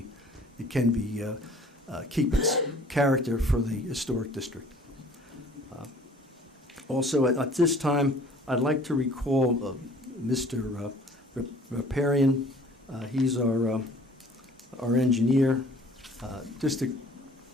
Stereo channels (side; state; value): both; normal; correlation 0.52